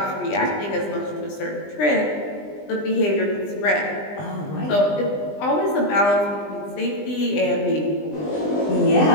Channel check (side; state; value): right; late; 20 ms